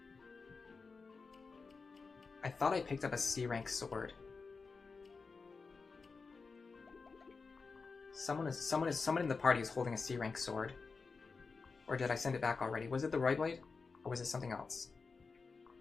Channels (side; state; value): right; quieter; 4.6 dB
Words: I thought I picked up a C-rank sword. Someone in the party is holding a C-rank sword. Or did I send it back already? Was it the Roy Blade? Or was it something else?